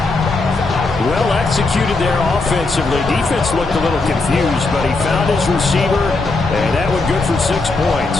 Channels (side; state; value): right; quieter; 3.5 dB